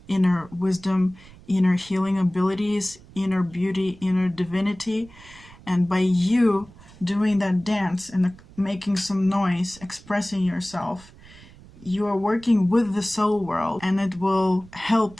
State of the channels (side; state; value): right; noise; rumble, 22 dB below the sound